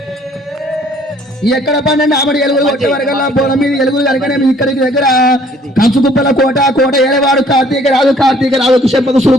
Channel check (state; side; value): normal; both; correlation 0.59